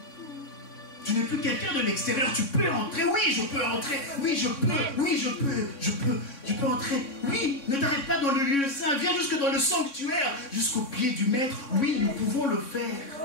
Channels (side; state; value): right; late; 3.6 ms